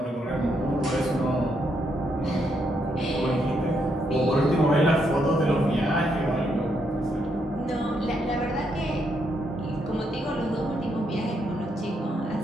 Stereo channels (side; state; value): both; normal; correlation 0.77